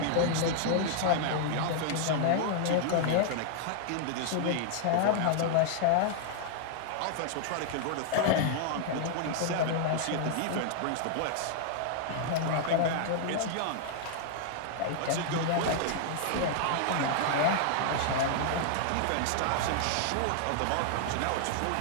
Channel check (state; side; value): different; both; correlation -0.01